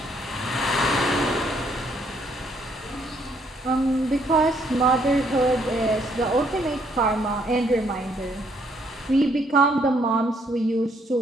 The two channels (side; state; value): both; normal; correlation 0.69